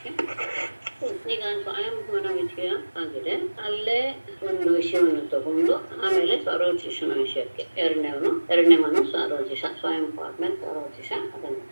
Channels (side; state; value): both; inverted; correlation -1.00